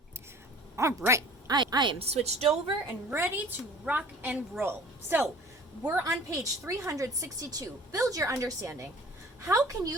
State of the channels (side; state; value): both; normal; correlation 0.48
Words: All right, I am switched over and ready to rock and roll. So we're on page 362, Build Your Understanding. How can